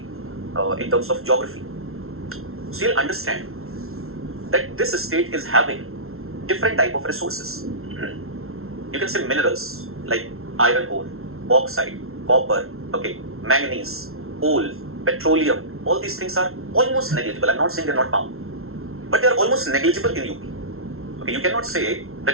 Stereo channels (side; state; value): left; late; 0.62 ms